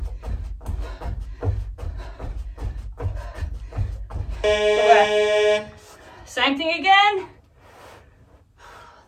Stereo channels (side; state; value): both; identical; correlation 1.00